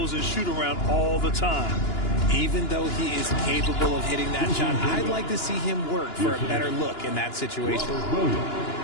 and shoot around all the time. Even though he is capable of hitting that shot, I'd like to see him work for a better look in that situation.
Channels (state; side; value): late; right; 2.9 ms